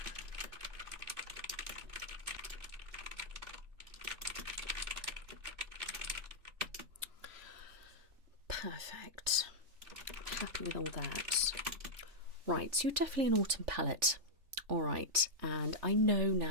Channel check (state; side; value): late; left; 3.4 ms